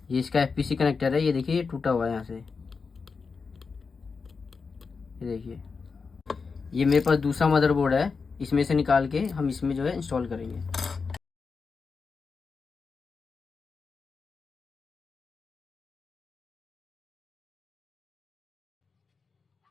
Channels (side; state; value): right; quieter; 5.0 dB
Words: ये इसका FPC connector है, ये देखिए ये टूटा हुआ है यहाँ से, ये देखिए। ये मेरे पास दूसरा मदरबोर्ड है, इसमें से निकाल के हम इसमें जो है इंस्टॉल करेंगे।